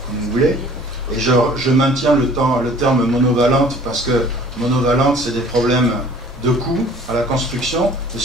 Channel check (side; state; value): both; normal; correlation 0.50